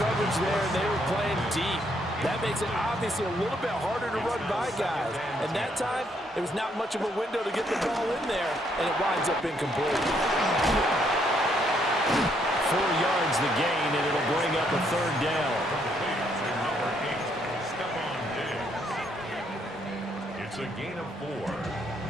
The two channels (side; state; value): both; normal; correlation 0.72